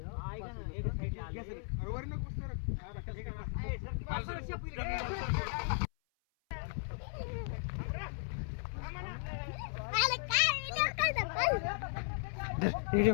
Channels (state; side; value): silent; right; 53 dB below the other